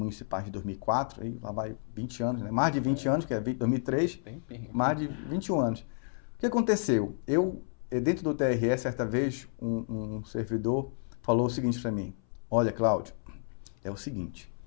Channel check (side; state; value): right; silent; 57 dB below the other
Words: de 2004, aí lá vai 20 anos, né, mais de 20 anos, que é 2003, mais de 21 anos. O que aconteceu? Dentro do TRE, certa vez, um servidor falou o seguinte para mim: olha, Cláudio, é o seguinte,